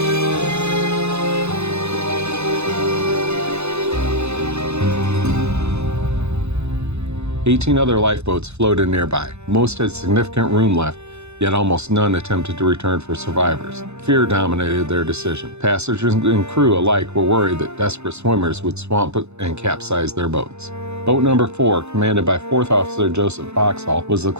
"18 other lifeboats floated nearby. Most had significant room left, yet almost none attempted to return for survivors. Fear dominated their decision. Passengers and crew alike were worried that desperate swimmers would swamp and capsize their boats. Boat number 4, commanded by 4th Officer Joseph Boxhall, was the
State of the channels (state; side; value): late; left; 0.81 ms